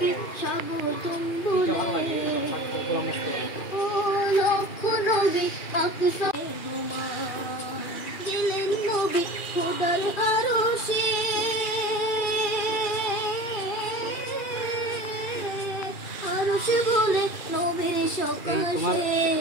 স্বাগতম বলে ও লক্ষ নবী আকসা মেহমান গেলেন নবী খোদার আরশে আরশে বলে নবীর সকাশে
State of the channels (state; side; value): late; right; 2.4 ms